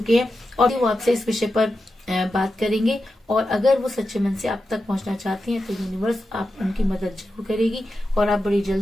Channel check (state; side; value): normal; both; correlation 0.90